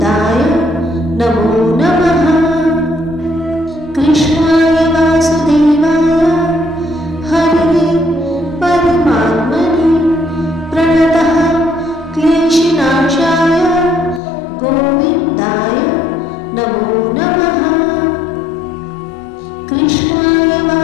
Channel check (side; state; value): right; drops out; at 14.2 s